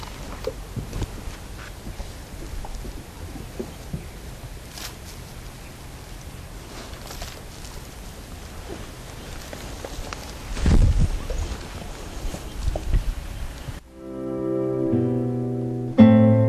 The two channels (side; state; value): both; identical; correlation 1.00